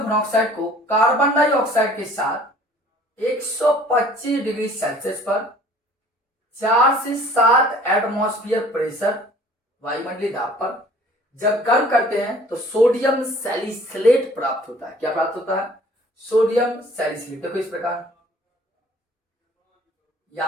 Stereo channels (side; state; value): both; normal; correlation 0.52